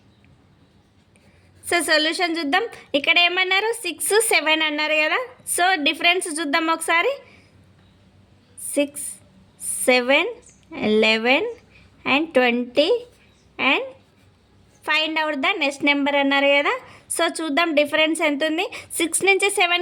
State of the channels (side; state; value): both; identical; correlation 1.00